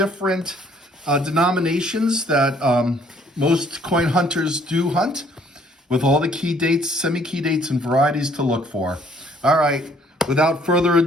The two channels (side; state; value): both; normal; correlation 0.62